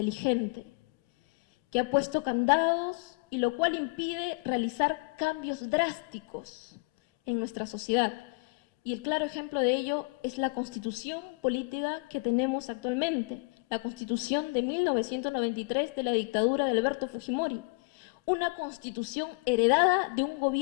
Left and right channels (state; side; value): quieter; right; 31.9 dB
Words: que ha puesto candados y lo cual impide realizar cambios drásticos en nuestra sociedad. Y el claro ejemplo de ello es la constitución política que tenemos actualmente, la constitución de 1993 de la dictadura de Alberto Fujimori, una constitución heredada de un